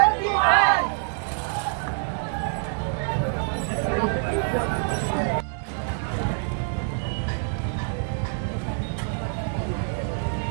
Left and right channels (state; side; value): silent; left; 57 dB below the other